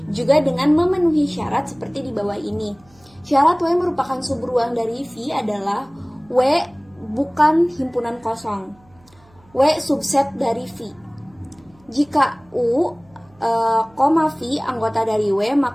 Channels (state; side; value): noise; right; hum, 29 dB below the sound